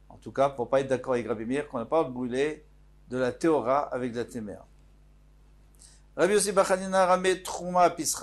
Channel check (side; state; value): both; identical; correlation 1.00